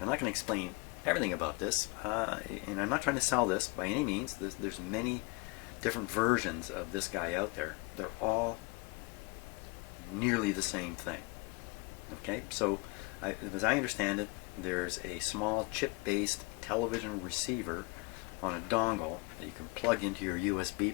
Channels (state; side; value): quieter; right; 26.7 dB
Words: I'm not going to explain everything about this, and I'm not trying to sell this by any means. There's many different versions of this guy out there. They're all nearly the same thing. Okay, so as I understand it, there's a small chip-based television receiver on a dongle that you can plug into your USB